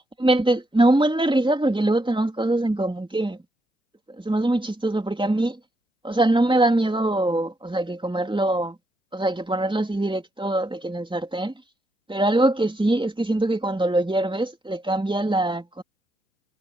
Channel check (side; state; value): both; normal; correlation 0.79